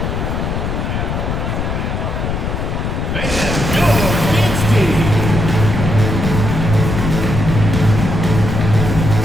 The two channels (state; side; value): noise; left; rumble, 2 dB below the sound